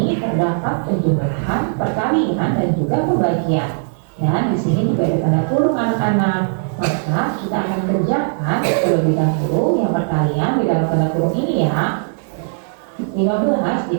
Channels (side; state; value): left; silent; digital silence